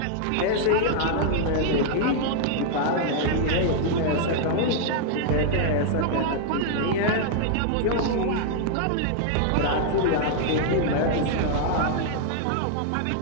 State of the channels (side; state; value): both; different; correlation -0.01